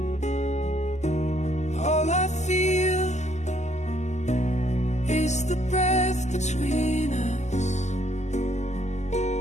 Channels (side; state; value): right; late; 0.33 ms